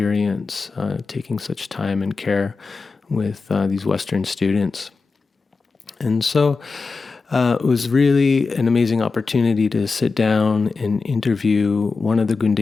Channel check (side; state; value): right; quieter; 4.3 dB